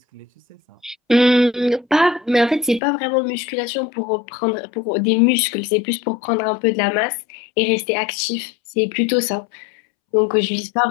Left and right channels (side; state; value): right; drops out; at 2.8 s